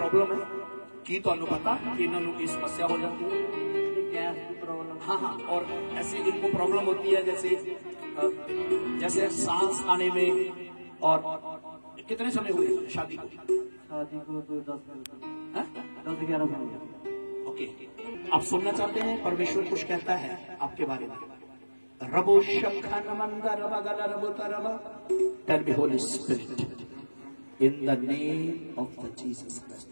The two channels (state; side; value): inverted; both; correlation -1.00